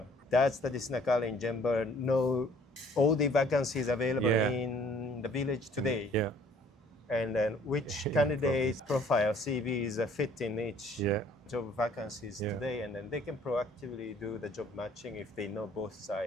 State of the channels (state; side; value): normal; both; correlation 0.57